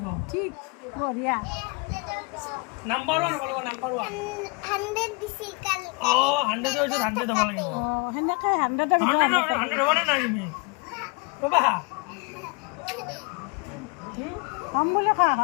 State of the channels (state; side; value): quieter; right; 30.0 dB